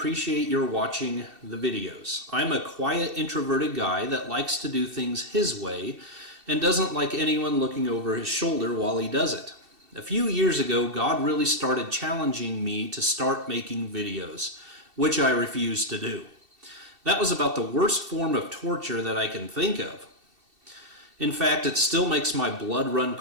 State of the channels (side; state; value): left; late; 2.7 ms